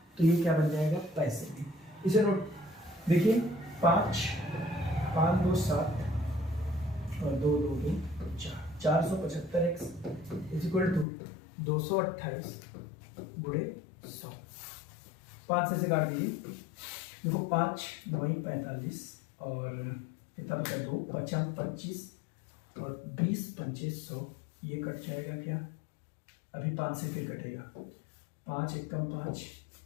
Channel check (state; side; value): drops out; right; at 11.1 s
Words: तो ये क्या बन जाएगा? पैसे में। इसे नोट देखिए, 5 5 2 7 और 2 2 2 4, 475x इज इक्वल टू 228 गुणे 100। 5 से काट दीजिए, देखो 5 9 45 और कितना बचा? 2 5 25 और 20 पंचे 100, ये कट जाएगा क्या? अभी 5 से फिर कटेगा, 5 एकम 5